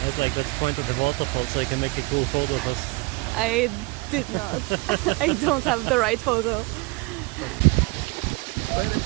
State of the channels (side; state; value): left; quieter; 25.8 dB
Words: I was like, let's point at the waterfall so I can make a cool photo of us. I did not. I don't have the right photo.